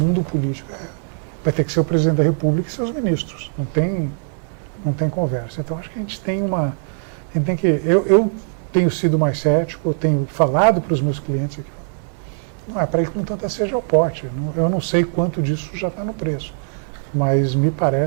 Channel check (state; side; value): silent; left; 57 dB below the other